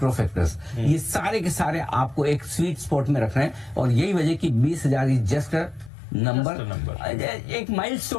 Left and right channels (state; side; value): drops out; right; at 5.9 s